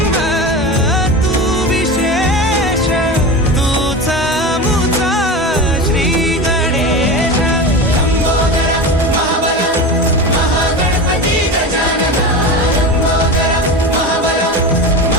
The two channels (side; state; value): both; normal; correlation 0.26